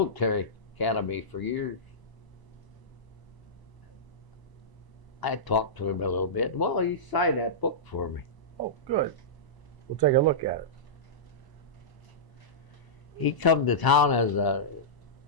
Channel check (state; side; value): late; right; 1.0 ms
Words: academy for years. I talked to him a little bit. Well, he signed that book for me. Oh, good. We'll take a look at it. He come to town